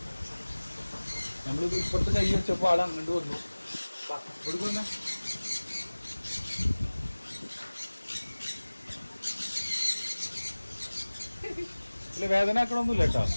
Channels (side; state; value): both; inverted; correlation -1.00